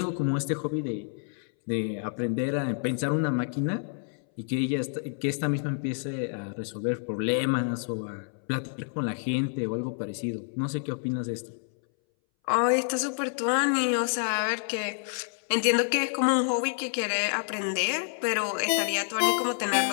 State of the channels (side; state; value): right; silent; 59 dB below the other